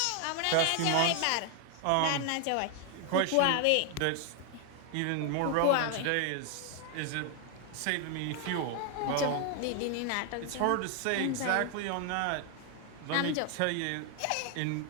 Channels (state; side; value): different; both; correlation 0.00